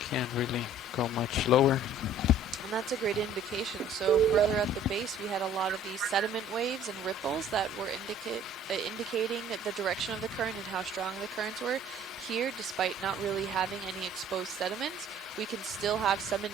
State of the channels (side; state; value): both; normal; correlation 0.53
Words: really go much lower. And that's a great indication. So further at the base, we had a lot of these sediment waves and ripples that were indicating the direction of the current and how strong the currents were. Here, despite not really having any exposed sediments, we can still have some